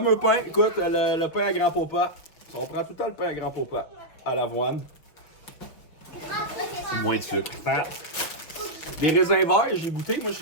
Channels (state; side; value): late; right; 6.0 ms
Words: pain, écoute, le pain à grand popa. On prend tout le temps le pain à grand popa à l'avoine. Moins de sucre. Fat. Des raisins verts, j'ai goûté. Moi,